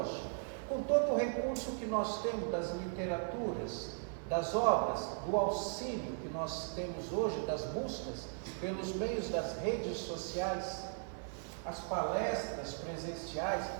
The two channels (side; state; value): left; silent; 53 dB below the other